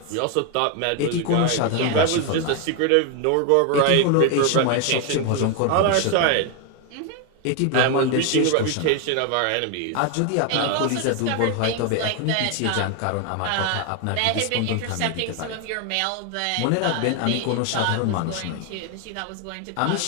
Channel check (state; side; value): different; both; correlation 0.01